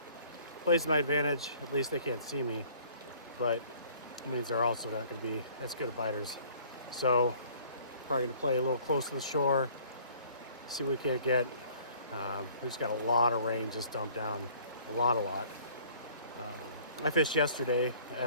to my advantage. At least they can't see me, but it means they're also not going to be as good at biters. So, probably going to play a little close to the shore. See what we can't get. We just got a lot of rain just dumped down. A lot. I fished yesterday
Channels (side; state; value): both; inverted; correlation -0.55